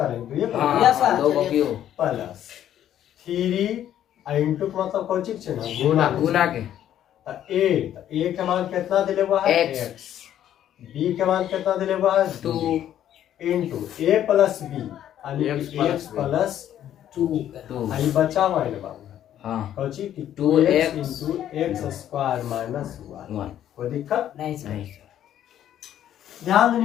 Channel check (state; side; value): quieter; right; 11.1 dB